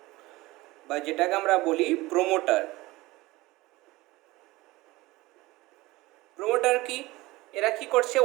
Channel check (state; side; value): quieter; left; 20.0 dB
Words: বা যেটাকে আমরা বলি প্রোমোটার। প্রোমোটার কি? এরা কি করছে?